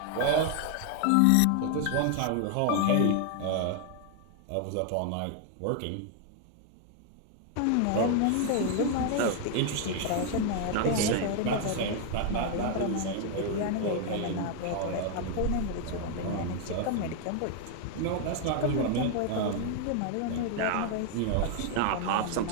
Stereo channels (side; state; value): both; different; correlation 0.00